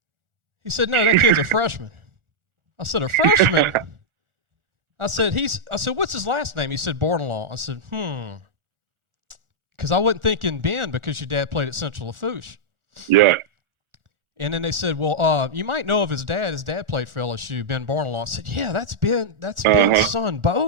He said, no, that kid's a freshman. I said, a freshman? I said, what's his last name? He said, Bordelon. I said, because I wasn't thinking Ben because your dad played at Central Lafourche. Yeah. And then they said, well, you might know of his dad. His dad played for LSU, Ben Bordelon. I said, yeah, that's Ben. That's Ben's son,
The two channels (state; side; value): late; left; 1.4 ms